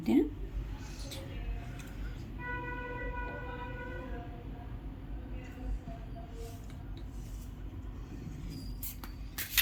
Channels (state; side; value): identical; both; correlation 1.00